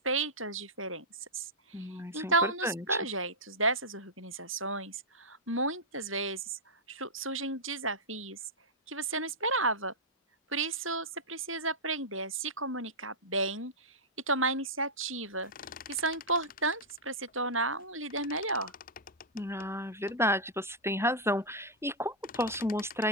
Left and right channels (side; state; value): both; normal; correlation -0.07